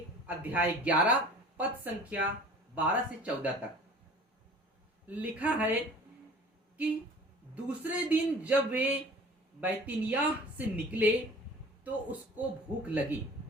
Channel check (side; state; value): both; normal; correlation 0.45